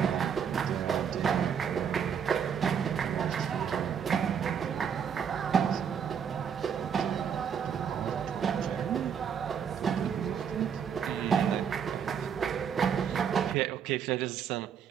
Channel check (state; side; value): quieter; left; 7.6 dB